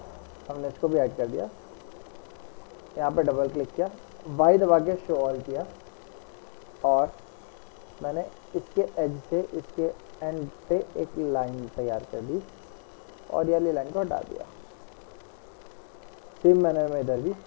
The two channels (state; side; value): silent; right; digital silence